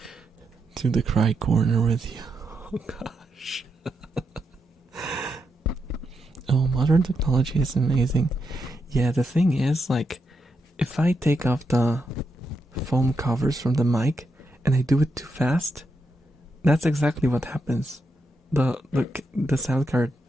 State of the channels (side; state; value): both; normal; correlation 0.83